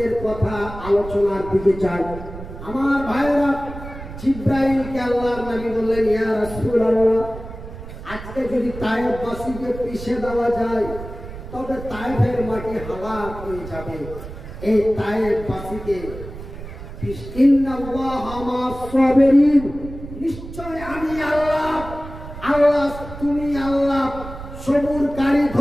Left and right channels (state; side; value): noise; right; rumble, 12 dB below the sound